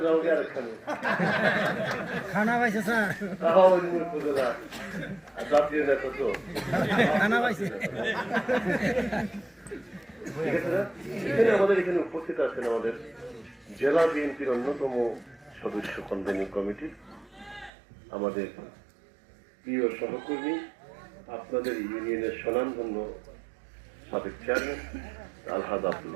যাও গে আরেকখানে খানা পাইছে স্যার, তাও উপজেলা জাতীয় নেতা তো খানা পাইছে। ঠিক আছে না? এখানে আমাদের এখানে উপস্থিত আছেন আমাদের জেলা বিএনপির অন্যতম সদস্য কনভেনিং কমিটি, আমাদের প্রিয় সহকর্মী, আপনাদের ইউনিয়নের স্বনামধন্য সাবেক চেয়ারম্যান আলহাজ আব্দুল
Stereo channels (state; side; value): drops out; left; at 17.7 s